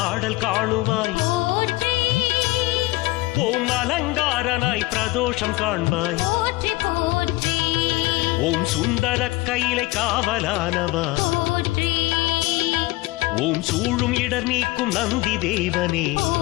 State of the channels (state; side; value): quieter; right; 20.6 dB